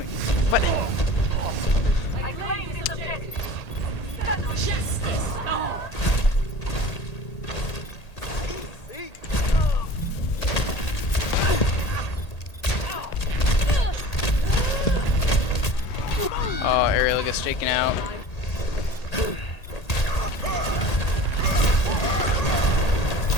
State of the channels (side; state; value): right; late; 1.8 ms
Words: What? I claim this objective. Justice. Oh, Ariel gets taken out.